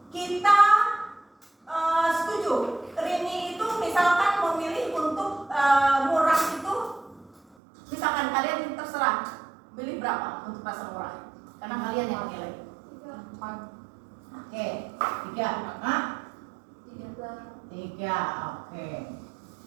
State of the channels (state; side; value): drops out; left; at 7.4 s